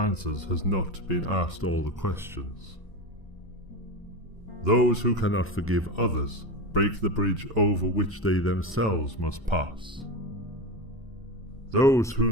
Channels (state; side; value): normal; both; correlation 0.22